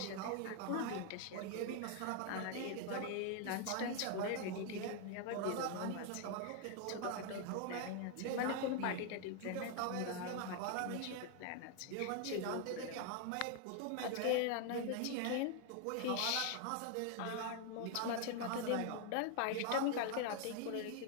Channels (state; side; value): different; both; correlation 0.00